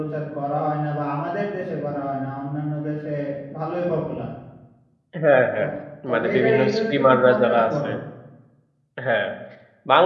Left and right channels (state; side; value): identical; both; correlation 1.00